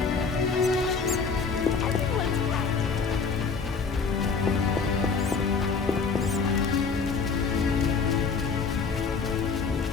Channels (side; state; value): right; quieter; 5.1 dB